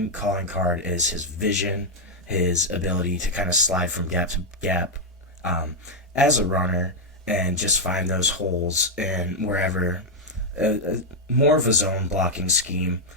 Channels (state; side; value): normal; both; correlation 0.00